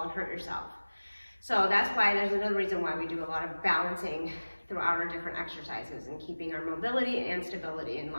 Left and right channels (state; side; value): inverted; both; correlation -1.00